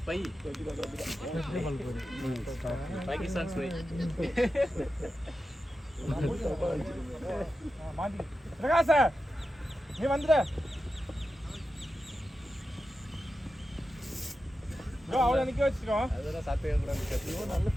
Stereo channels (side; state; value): both; normal; correlation 0.91